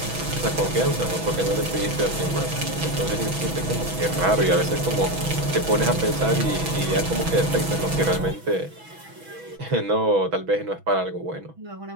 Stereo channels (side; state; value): left; late; 6.1 ms